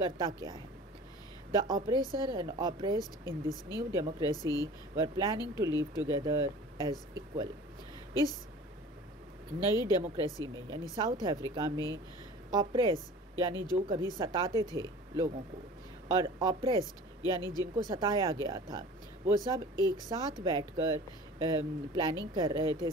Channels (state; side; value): normal; both; correlation 0.42